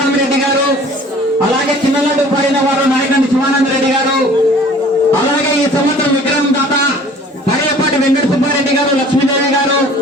గారు, అలాగే చిన్నలడ్డు పాడిన వారు నాయకండి శివానందరెడ్డి గారు, అలాగే ఈ సంవత్సరం విక్రమ్ దాత పడేపాటి వెంకట సుబ్బారెడ్డి గారు, లక్ష్మీదేవి గారు,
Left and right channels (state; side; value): normal; both; correlation 0.50